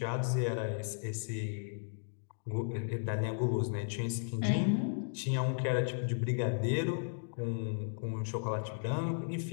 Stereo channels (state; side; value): silent; right; digital silence